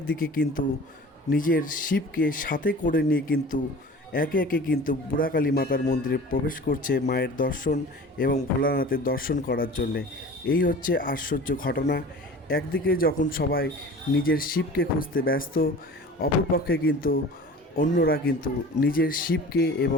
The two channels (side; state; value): both; normal; correlation 0.41